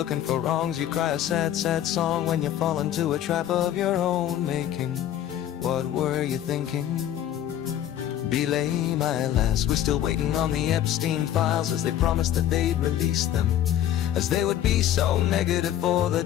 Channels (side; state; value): right; quieter; 11.4 dB